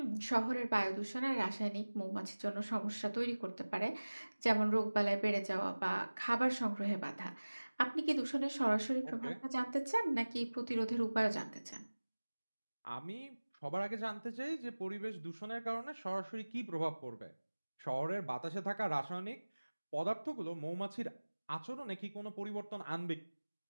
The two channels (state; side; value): inverted; both; correlation -1.00